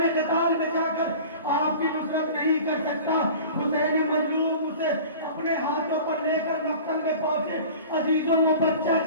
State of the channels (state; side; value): inverted; both; correlation -0.40